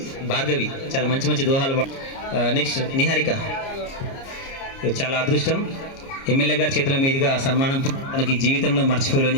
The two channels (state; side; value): late; right; 30 ms